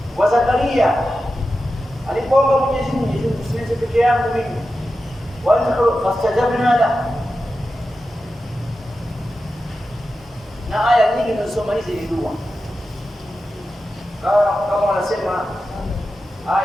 Wa Zakaria alipoomba Mwenyezi Mungu, usiweze peke yangu mimi. Wa fastajabna la. Na aya nyingi tunasoma hizi ni dua. Kama wanasema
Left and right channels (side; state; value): both; normal; correlation 0.91